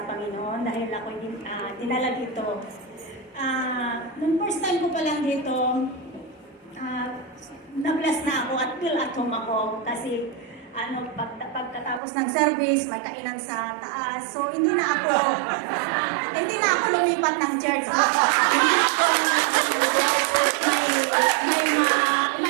Panginoon dahil ako dinala dito. Nung first time ko pa lang dito, na-bless na ako at feel at home ako kasi pagkatapos ng service, may kainan sa taas. So, hindi na ako lumipat ng church.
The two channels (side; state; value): left; drops out; at 12.0 s